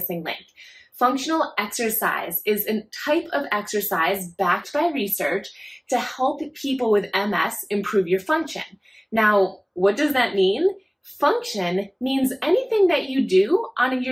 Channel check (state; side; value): identical; both; correlation 1.00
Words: Link. Functional exercise is a type of exercise backed by research to help people with MS improve your function. Now, what does that mean? Function means anything that you do on